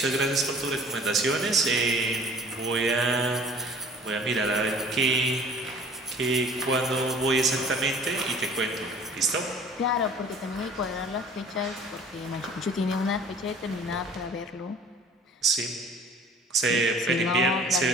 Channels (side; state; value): both; normal; correlation 0.49